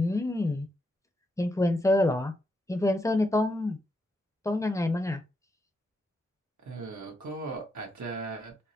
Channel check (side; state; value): both; normal; correlation 0.82